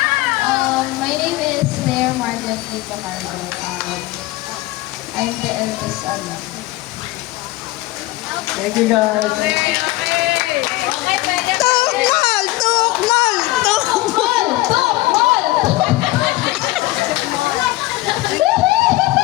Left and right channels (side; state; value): right; quieter; 18.8 dB